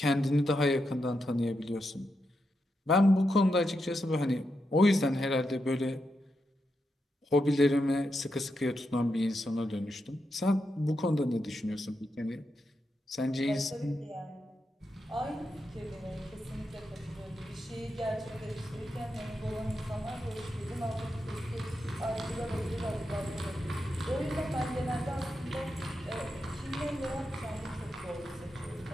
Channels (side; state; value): both; normal; correlation 0.85